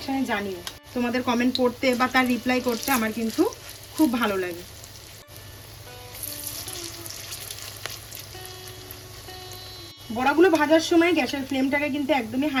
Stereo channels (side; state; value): both; identical; correlation 1.00